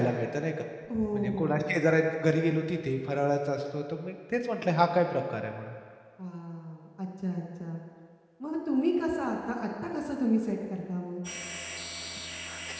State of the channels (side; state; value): both; identical; correlation 1.00